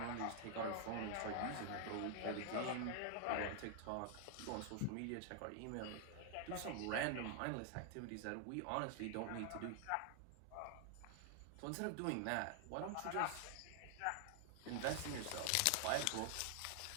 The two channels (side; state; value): both; different; correlation 0.00